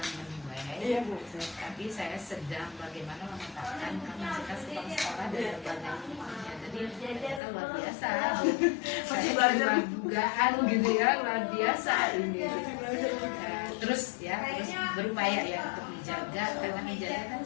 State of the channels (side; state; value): right; drops out; at 7.4 s